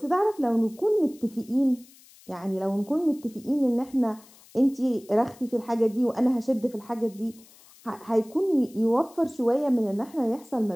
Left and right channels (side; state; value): left; noise; hiss, 25 dB below the sound